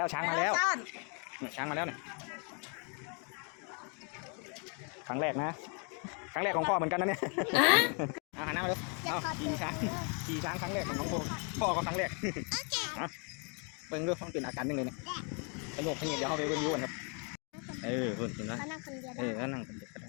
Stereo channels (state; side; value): quieter; right; 37.9 dB